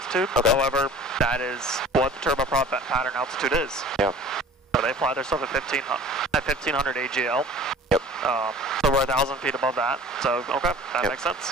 Okay. However, that is what the turboprop pattern altitude is. Yeah. So they fly their stuff at 1,500 AGL. Yep. So we're 1,000 feet above that. So, okay, that makes sense.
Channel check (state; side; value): normal; both; correlation 0.44